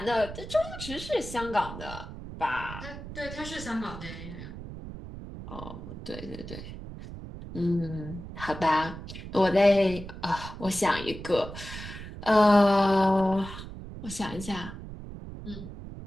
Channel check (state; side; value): noise; right; rumble, 11 dB below the sound